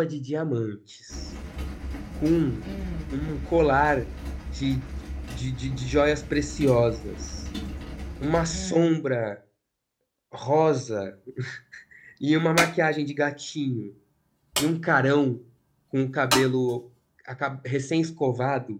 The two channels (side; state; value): both; identical; correlation 1.00